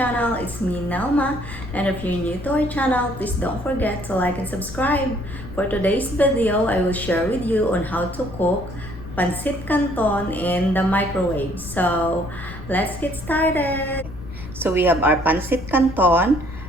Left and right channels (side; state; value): left; noise; rumble, 13 dB below the sound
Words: It's me Nelma, and if you're new to our channel, please don't forget to like and subscribe. For today's video, I will share with you on how to cook Pancit Canton in the microwave. So let's get started. So we have our Pancit Canton.